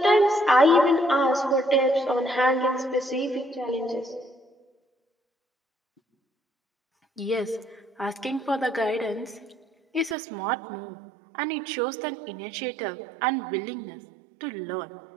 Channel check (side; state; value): left; drops out; at 10.2 s